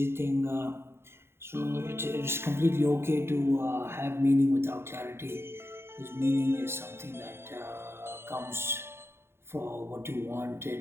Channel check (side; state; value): left; late; 0.12 ms